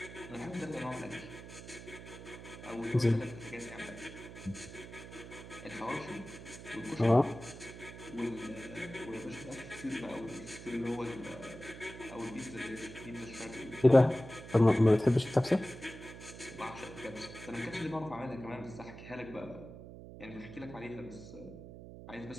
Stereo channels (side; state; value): right; noise; hum, 13 dB below the sound